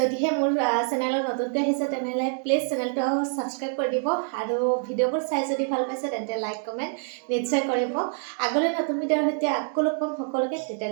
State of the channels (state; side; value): silent; left; 58 dB below the other